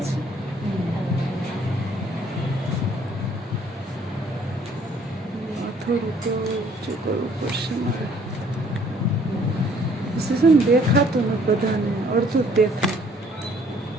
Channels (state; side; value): normal; both; correlation 0.60